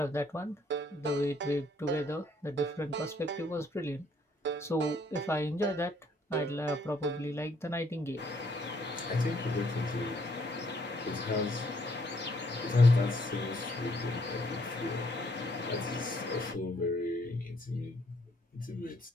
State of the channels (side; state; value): both; normal; correlation 0.67